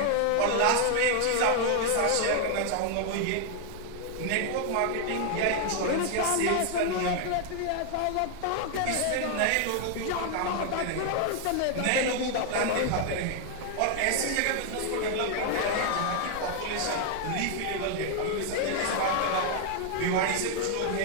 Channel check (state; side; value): different; both; correlation 0.00